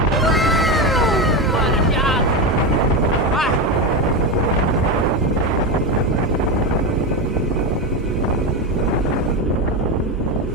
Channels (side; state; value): both; normal; correlation 0.14